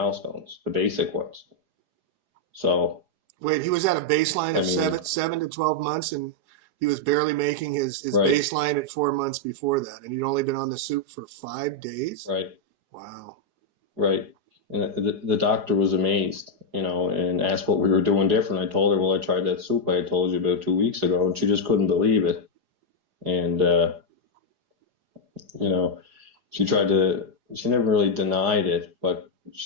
the basic ones. So, Wait, he was at a baseline I of mean, seven to 12 months, and he was barely making his right, baseline at 4 months before that, and he'd only been on the soup for 5 days. right, Wow. right. And the doctor was amazed, and asked what we were doing different. I told her, well, I tried that soup I had told you about 2 weeks ago, and she just couldn't believe it. And, you know, she never really denied it, but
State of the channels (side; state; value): left; late; 4.9 ms